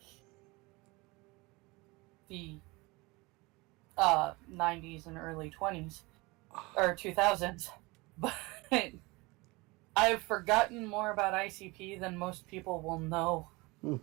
the 90s and early 20s. Or 2000s. But I've forgotten more about ICP than most people will know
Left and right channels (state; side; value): quieter; left; 24.1 dB